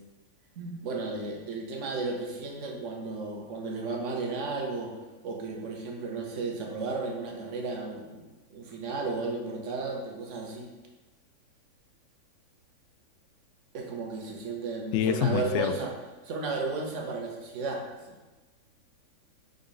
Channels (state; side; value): late; left; 3.5 ms